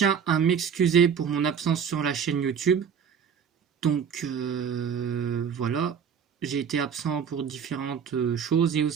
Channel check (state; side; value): quieter; left; 7.3 dB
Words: à m'excuser pour mon absence sur la chaîne YouTube. Donc voilà, j'ai été absent pour différentes choses et